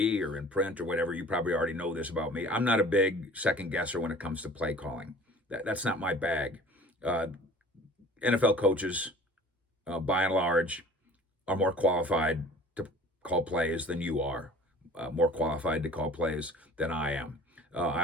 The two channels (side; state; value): both; normal; correlation 0.47